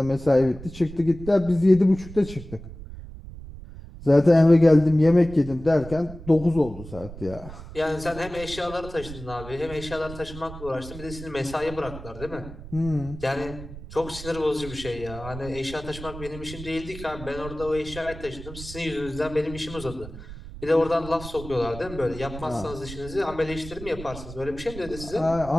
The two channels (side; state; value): right; noise; rumble, 13 dB below the sound